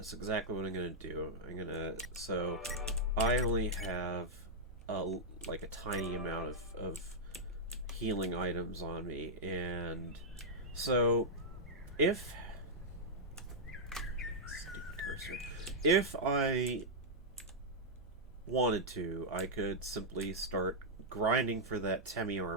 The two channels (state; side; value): noise; right; hum, 20 dB below the sound